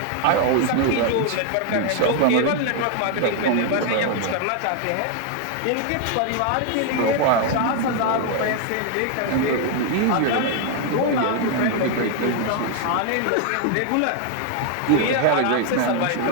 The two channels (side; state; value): both; different; correlation 0.00